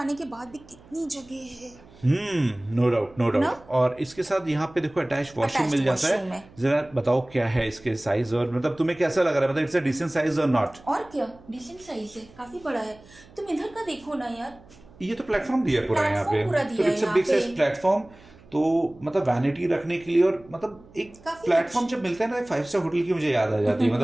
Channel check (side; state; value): right; noise; hum, 24 dB below the sound